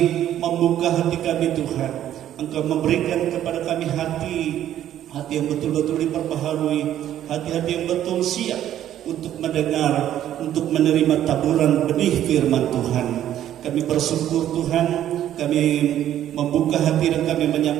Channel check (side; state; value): left; quieter; 11.5 dB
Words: membuka hati kami Tuhan. Engkau memberikan kepada kami hati yang betul-betul diperbaharui, hati-hati yang betul siap untuk mendengar, untuk menerima taburan benih firman Tuhan. Kami bersyukur Tuhan, kami membuka hati dan kami